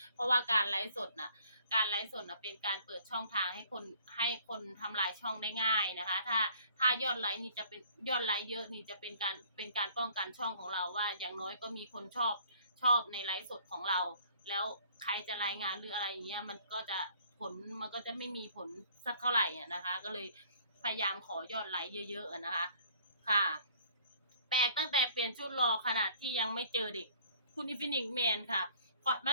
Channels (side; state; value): both; inverted; correlation -0.57